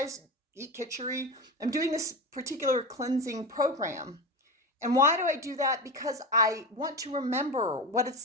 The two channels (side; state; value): both; normal; correlation 0.23